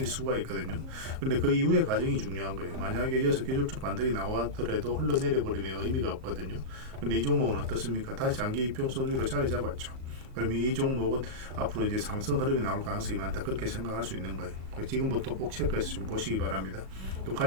수가 있거든요. 근데 그 이후의 과정이 중요한 거예요. 만약에 이어서 기술적 반등이 나왔더라도 흘러내려 버리면 의미가 없거든요. 근데 이 종목은 어떻습니까? 다시 장기 이평선 위로 자리 잡았죠. 그러면 이 종목은 앞으로 이제 상승 흐름이 나올 가능성이 많다. 그렇게 생각할 수 있는 거예요. 지금부터 꼭 체크해서 좀 보시기 바랍니다. 또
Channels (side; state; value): left; late; 37 ms